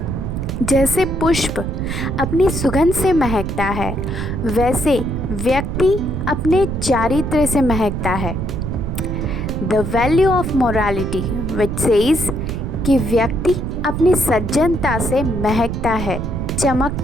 जैसे पुष्प अपनी सुगंध से महकता है, वैसे व्यक्ति अपने चारित्र से महकता है। The value of morality which says कि व्यक्ति अपनी सज्जनता से महकता है,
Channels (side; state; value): right; noise; rumble, 4 dB below the sound